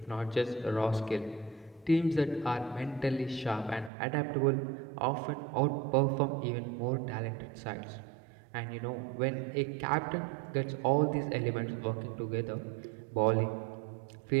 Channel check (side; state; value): left; drops out; at 3.9 s